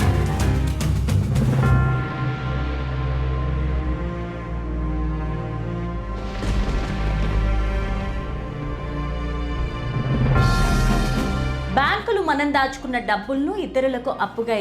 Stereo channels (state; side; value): identical; both; correlation 1.00